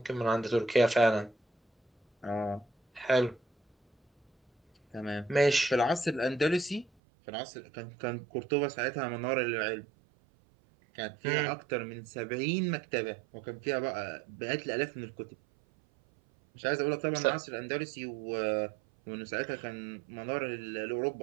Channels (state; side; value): drops out; left; at 6.9 s